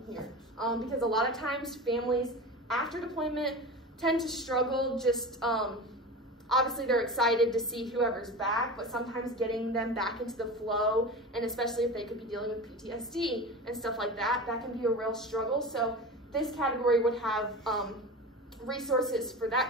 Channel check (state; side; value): normal; both; correlation 0.29